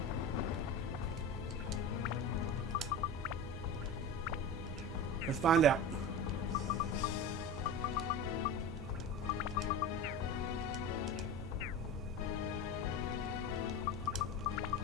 Let's find out.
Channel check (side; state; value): both; normal; correlation 0.28